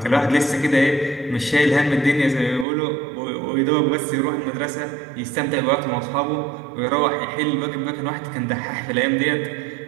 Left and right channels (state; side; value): drops out; left; at 2.7 s